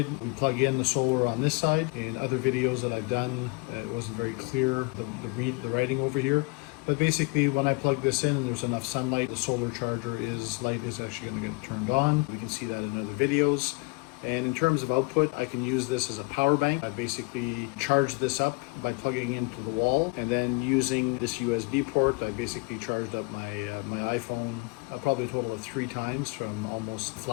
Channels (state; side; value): quieter; right; 27.7 dB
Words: we plug in the solar on this side. In other videos that I've done, it wasn't very clear, the writing over here. But basically, when I plug this in and there's enough sunlight, the solar charger light is actually going to get turned on. We can see that in other videos. And in terms of output, I can use this as a power bank. I basically charge this up by plugging into the wall, and then using this USB port, I basically charged up my iPhone probably a total of 3 times from almost